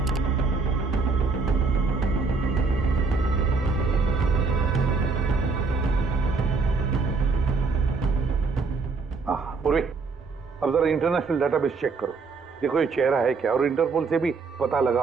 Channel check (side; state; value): left; quieter; 4.4 dB